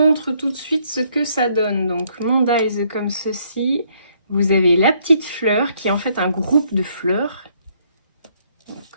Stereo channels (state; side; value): inverted; both; correlation -0.69